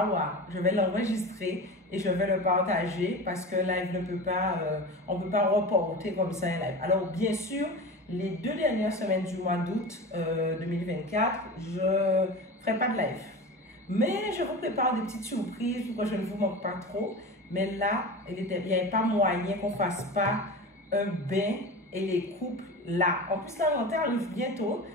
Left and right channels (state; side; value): normal; both; correlation 0.30